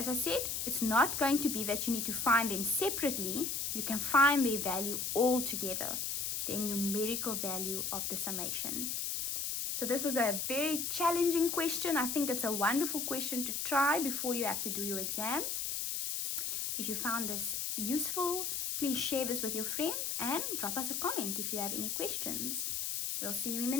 I said, it's not going to be that you need to find them separately. You can find their value all together, the numerical value of the summation. So this was a very challenging question. I think it's a wonderful question to try before you have to do your exams. If you found this useful, please share this with your friends and drop us a comment if you have any questions. We'll see you in the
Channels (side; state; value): left; noise; hiss, 1 dB below the sound